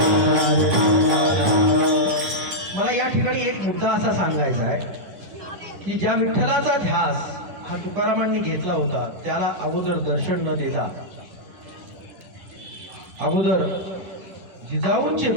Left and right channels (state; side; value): late; left; 10 ms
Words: मला या ठिकाणी एक मुद्दा असा सांगायचा आहे की ज्या विठ्ठलाचा ध्यास हा तुकारामांनी घेतला होता त्याला अगोदर दर्शन न देता अगोदर जिजाऊंचे